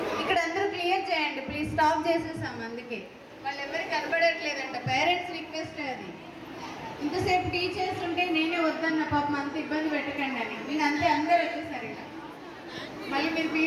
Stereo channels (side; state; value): both; identical; correlation 1.00